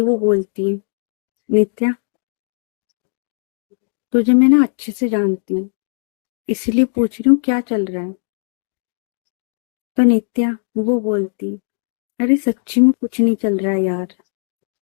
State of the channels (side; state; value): right; silent; digital silence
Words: वो बोलती है, नित्या तुझे मैं ना अच्छे से जानती हूँ, इसलिए पूछ रही हूँ क्या चल रहा है। तो नित्या वो बोलती, अरे सच्ची में कुछ नहीं चल रहा है यार,